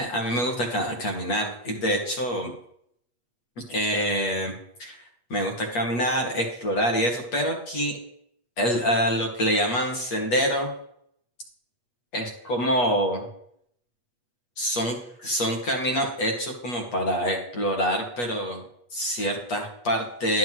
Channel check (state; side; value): late; right; 8.3 ms